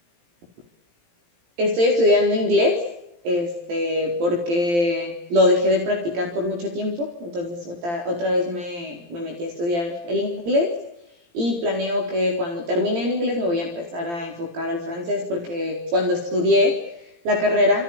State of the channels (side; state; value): left; late; 17 ms